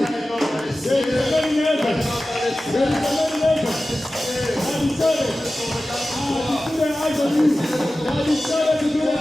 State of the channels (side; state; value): both; normal; correlation 0.95